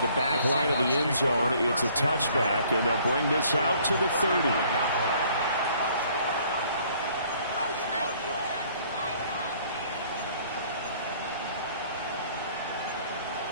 the back line of the end zone. It's a touchback, and they'll bring this out to the 30.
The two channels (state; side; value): inverted; both; correlation -0.59